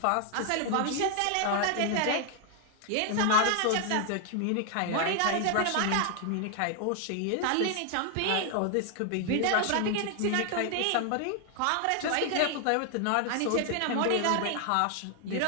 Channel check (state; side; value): different; both; correlation 0.00